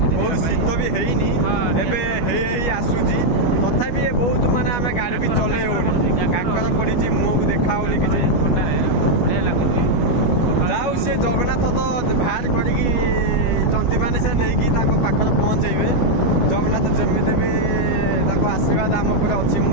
बहुत शीत भी हैनी एबे आसूची तथापि बहुत माने आम गाड़ी भी चले होनी काकर पड़ी मुँह देखा होनी कि ठंडा बढ़िया लगुच जाऊ से जगन्नाथ तो बाहर करी जंती मैंने से नहीं पाखर पहुँचे जगन्नाथ जमी भी आशीर्वाद आम पर अच्छी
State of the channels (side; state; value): right; late; 12 ms